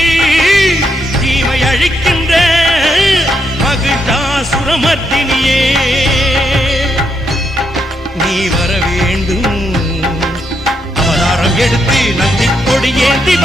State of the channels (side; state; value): both; normal; correlation 0.79